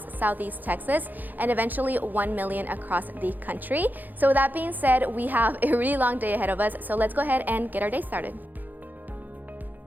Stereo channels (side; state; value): left; late; 0.085 ms